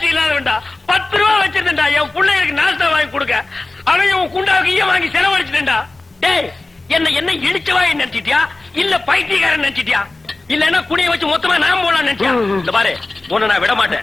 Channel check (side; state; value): right; quieter; 3.1 dB